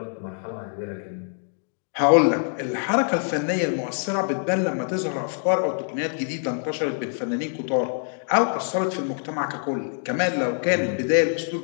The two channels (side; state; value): right; silent; digital silence